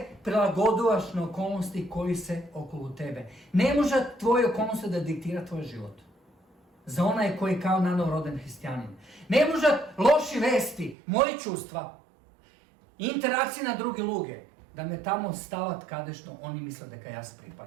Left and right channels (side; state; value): left; drops out; at 11.0 s